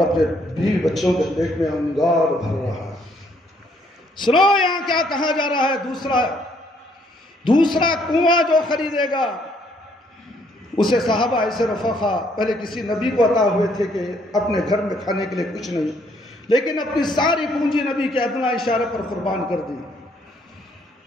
بیوی بچوں کے پیٹ میں انگار بھر رہا ہے۔ سنو یہاں کیا کہا جا رہا ہے؟ دوسرا کنواں جو خریدے گا اسے صحابہ ایسے رفقا پہلے کسی نبی کو عطا ہوئے تھے کہ اپنے گھر میں کھانے کے لیے کچھ نہیں، لیکن اپنی ساری پونجی نبی کے ادنا اشارے پر قربان کر دی۔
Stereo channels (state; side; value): normal; both; correlation 0.68